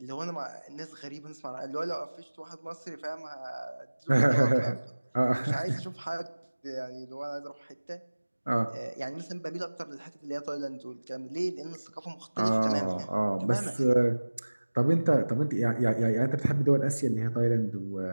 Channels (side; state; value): both; inverted; correlation -1.00